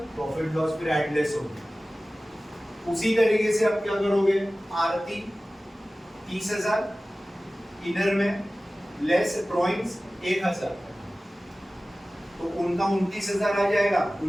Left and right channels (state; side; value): normal; both; correlation 0.97